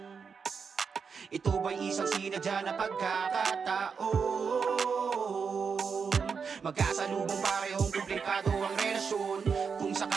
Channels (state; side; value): quieter; left; 5.9 dB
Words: Ito ba'y isang sinadya na pagkakataon? Magkasalubong parehong komplikado ang relasyon. Kung